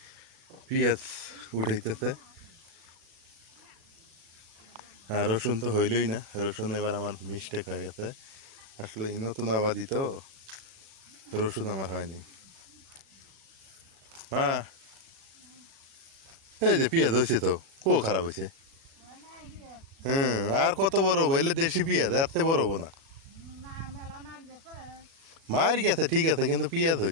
পেঁয়াজ উঠাইতেছে, আর রসুন তো হইলই না। রসুন এবার আমার মিস্টেক হয়ে গেছে, আসলে নতুন আবাদি তো, রসুন আমার হয়নি। মা, এই যে পেঁয়াজ হয়েছে তো, খারাপ হয়েছে। আর কত বড় হবো? এলে দেশি পেঁয়াজ, এর চেয়ে বড় হবো না। মার গেছে ঠিক আছে, কিন্তু পেঁয়াজ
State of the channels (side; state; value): left; late; 36 ms